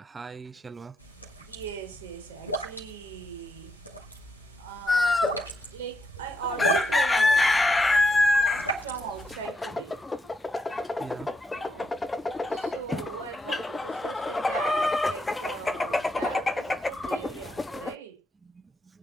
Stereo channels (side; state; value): both; normal; correlation 0.80